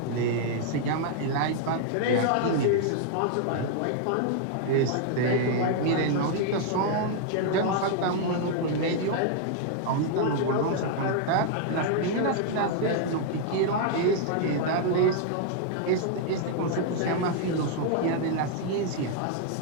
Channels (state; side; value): different; both; correlation 0.00